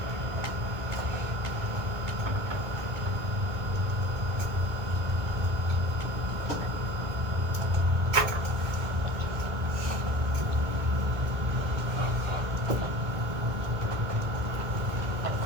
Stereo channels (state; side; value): late; left; 1.8 ms